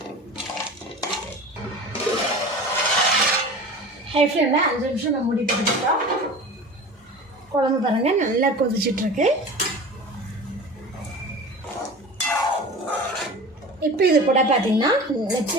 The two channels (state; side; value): normal; both; correlation 0.36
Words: ஹை ஃப்ளேமில் 5 நிமிஷம் நம்ம மூடி போட்டுக்கிட்டோம். குழம்பு பாருங்கள் நல்லா கொதிச்சிட்ருக்கு. இப்போ இது கூட பார்த்திங்கன்னா நெச்சி